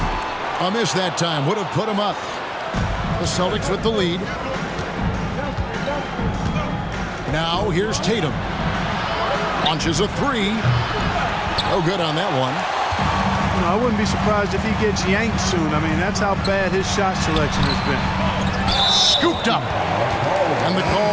A miss that time would have put him up. The Celtics with the lead. Now here's Tatum. Launches a three. No good on that one. You know, I wouldn't be surprised if he gets yanked soon. I mean, that's how bad his shot selection has been. Scooped up. And the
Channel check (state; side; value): identical; both; correlation 1.00